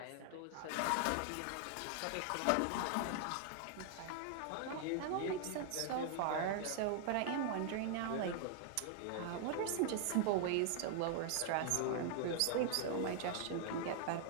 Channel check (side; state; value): both; different; correlation 0.00